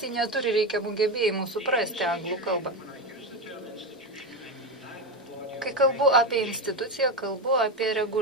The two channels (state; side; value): normal; both; correlation 0.15